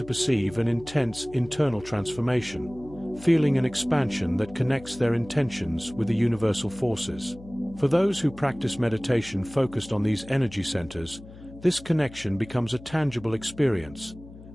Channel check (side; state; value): left; noise; hum, 18 dB below the sound